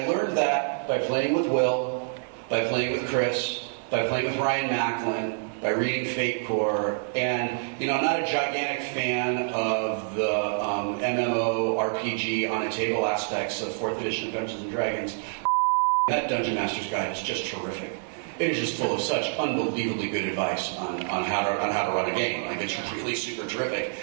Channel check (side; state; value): left; silent; 60 dB below the other